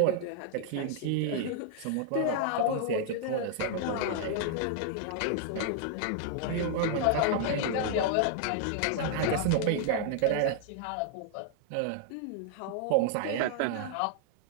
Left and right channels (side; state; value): both; different; correlation 0.00